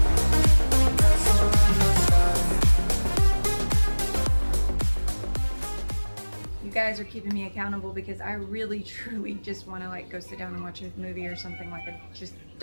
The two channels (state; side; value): inverted; both; correlation -1.00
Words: Castle in the sky. You guys are keeping me accountable because I really truly just want to like go sit down and watch a movie or something. Like, I just